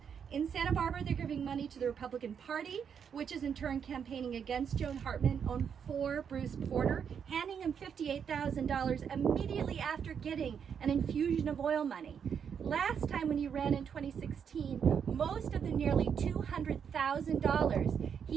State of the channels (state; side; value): quieter; left; 7.4 dB